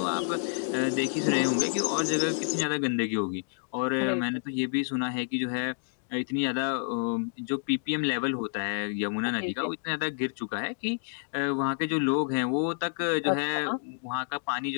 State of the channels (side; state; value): right; silent; digital silence